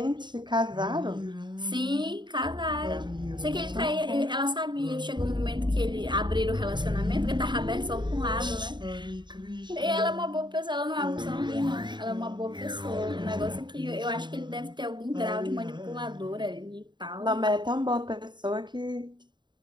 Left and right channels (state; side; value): late; left; 0.22 ms